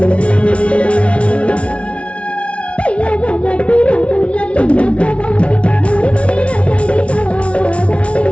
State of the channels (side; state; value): right; late; 0.062 ms